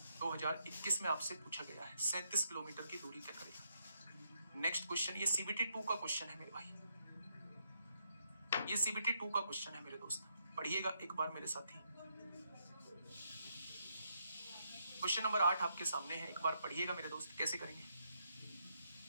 2021 में आपसे पूछा गया है 37 किलोमीटर की दूरी तय करेगा। नेक्स्ट क्वेश्चन, ये सीबीटी 2 का क्वेश्चन है मेरे भाई, ये सीबीटी 2 का क्वेश्चन है मेरे दोस्त, पढ़िएगा एक बार मेरे साथ ही। क्वेश्चन नंबर 8 आपके सामने है, एक बार पढ़िएगा मेरे दोस्त। कैसे करेंगे,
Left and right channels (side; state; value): both; inverted; correlation -0.77